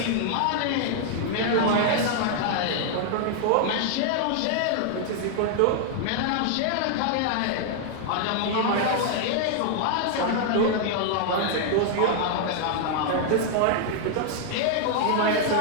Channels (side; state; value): both; different; correlation 0.00